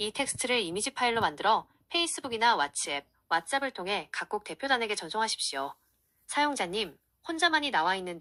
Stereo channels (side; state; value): both; identical; correlation 1.00